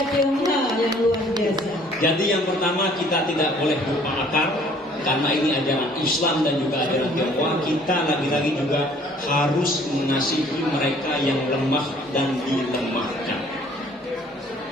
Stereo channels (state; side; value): normal; both; correlation 0.57